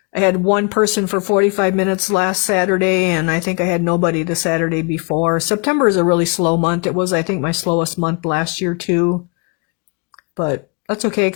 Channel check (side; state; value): right; quieter; 32.8 dB